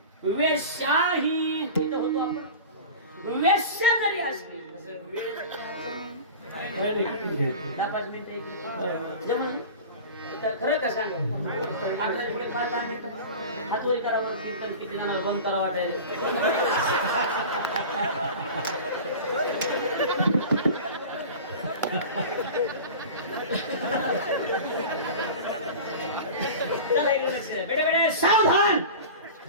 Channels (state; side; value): inverted; both; correlation -0.34